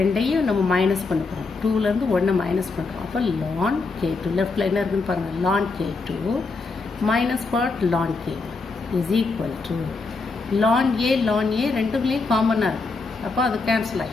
நம்ம மைனஸ் பண்ண போகிறோம். 2லேருந்து 1 மைனஸ் பண்ணுறோம். அப்போ ln K2 லெஃப்டில் என்ன இருக்குதுன்னு பாருங்கள், ln K2 minus what, ln K1 is equal to ln A ரெண்டுக்குள்ளேயும் காமனாக இருக்குது. அப்போ அது கேன்சல்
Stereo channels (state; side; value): quieter; right; 3.9 dB